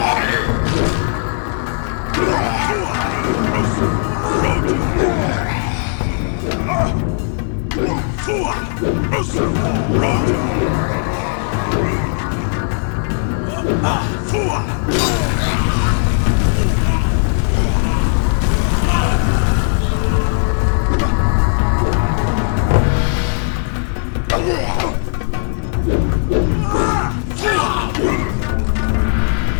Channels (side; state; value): right; silent; 61 dB below the other